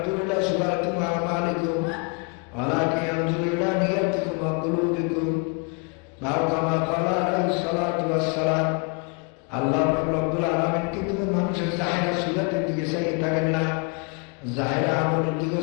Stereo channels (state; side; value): quieter; right; 33.4 dB